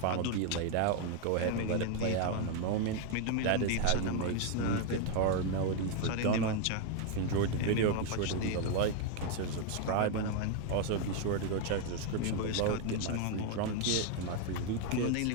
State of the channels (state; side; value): different; both; correlation 0.01